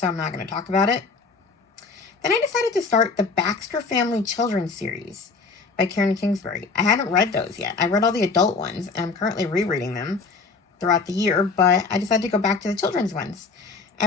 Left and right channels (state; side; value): quieter; right; 4.4 dB